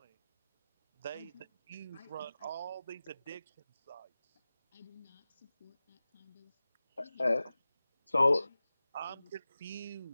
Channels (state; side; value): inverted; both; correlation -0.96